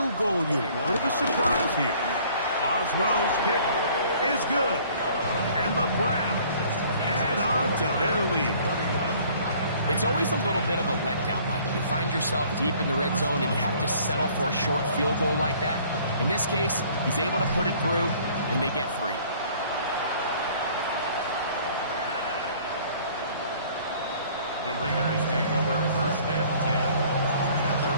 goal unit. Bit of a surprise here. Boswell's kick is good. And the Browns add on to their lead. It's always a little bit of a letdown, Mike. You find yourself deep in the red zone and you have to settle for a short field goal like that. In this case, he's able to put it through, and they get 3. The Raiders take over 1st and 10 at their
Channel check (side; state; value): both; inverted; correlation -0.55